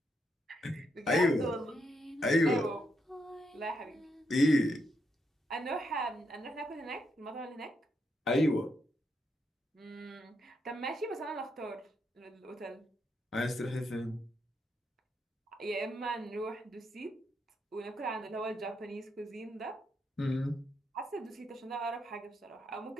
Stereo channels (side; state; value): both; normal; correlation 0.80